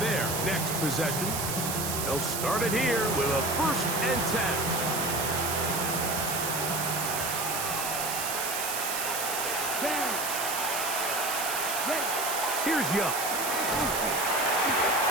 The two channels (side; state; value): right; noise; hiss, 2 dB below the sound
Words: their next possession. They'll start it here with a 1st and 10. Here's Young.